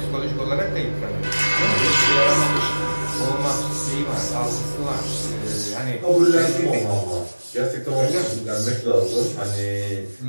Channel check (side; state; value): both; inverted; correlation -1.00